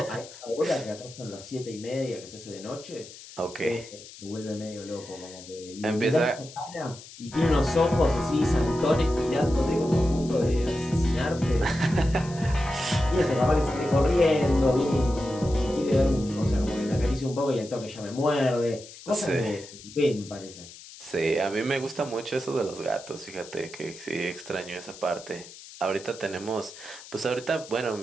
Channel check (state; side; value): noise; left; hiss, 17 dB below the sound